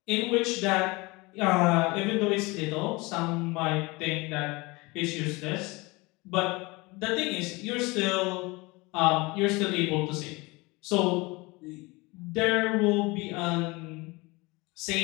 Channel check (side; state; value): right; quieter; 24.4 dB